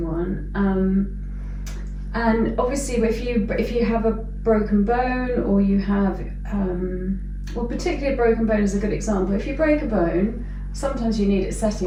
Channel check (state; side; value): identical; both; correlation 1.00